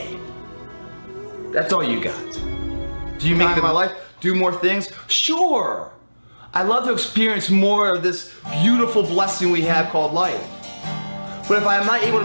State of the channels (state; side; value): inverted; both; correlation -1.00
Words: That's all you got. Do you make my life do more things? Sure. I'd love to experience more of this beautiful blessing we have called life. But if I'm not able to